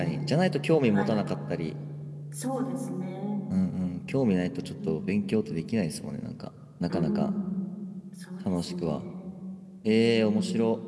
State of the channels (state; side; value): identical; both; correlation 1.00